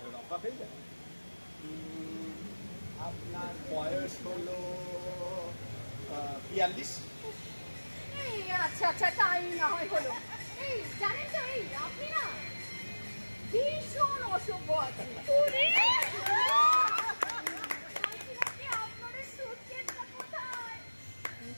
রফা হয়ে যাবে। আপনার বয়স হলো 42। এই আচ্ছা আচ্ছা, তাই না হয় হলো। এই জানেন তো, এই আপনি না ভীষণ অসভ্য আছেন। আপনার সুটকেসটা কোথায়?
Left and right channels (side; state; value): both; inverted; correlation -1.00